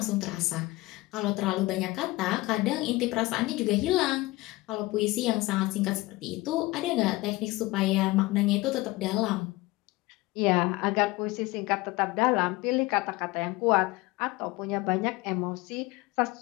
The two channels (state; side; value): quieter; right; 20.6 dB